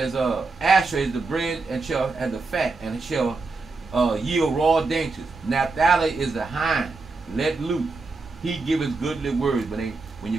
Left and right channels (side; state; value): left; quieter; 3.9 dB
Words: Asher is the bread and shall and the fat and shall yield raw dainties. Naphtali is the hind, let loose. He giveth goodly words. When